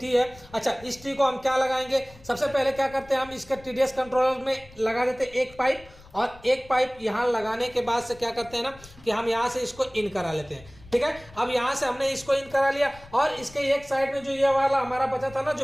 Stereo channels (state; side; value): noise; left; rumble, 22 dB below the sound